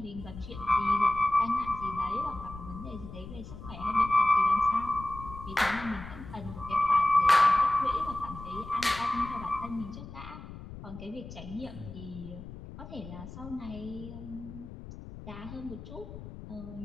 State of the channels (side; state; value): left; noise; rumble, 13 dB below the sound